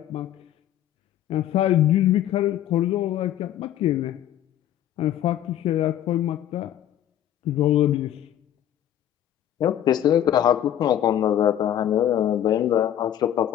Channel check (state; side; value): quieter; right; 11.3 dB